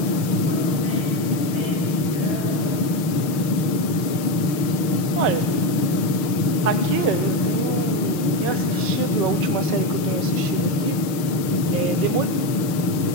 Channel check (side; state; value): right; late; 6.5 ms